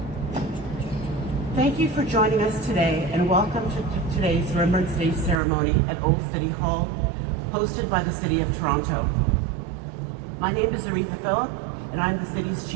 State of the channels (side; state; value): left; drops out; at 5.4 s